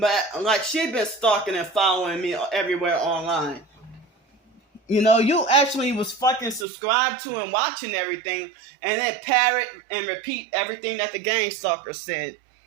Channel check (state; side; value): drops out; left; at 6.7 s